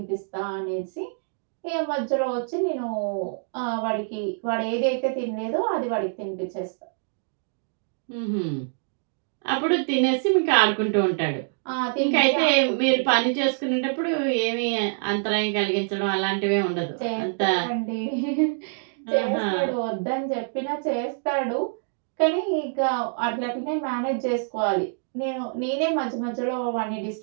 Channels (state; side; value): silent; left; digital silence